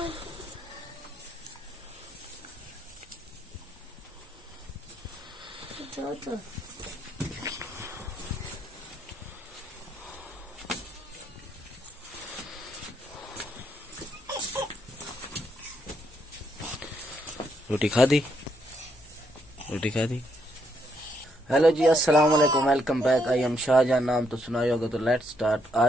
रोटी खा दी? रोटी खा दी? हेलो जी, अस्सलाम वालेकुम, welcome back. I am Shahjahan. नाम तो सुना ही होगा, तो लेट्स स्टार्ट।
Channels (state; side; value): normal; both; correlation 0.75